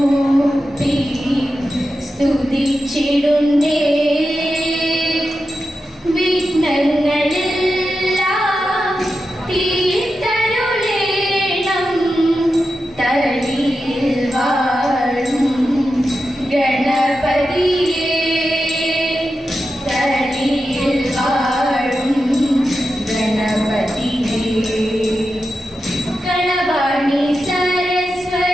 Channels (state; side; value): normal; both; correlation 0.90